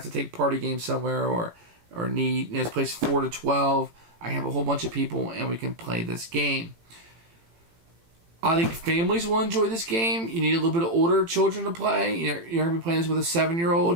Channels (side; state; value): left; late; 18 ms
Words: to take party games somewhere or need, it's placed 4 to 12. I have a whole bunch of people and we can play this game. I think families will enjoy this game. You need a little bit of older children to play. You're going to be playing this with a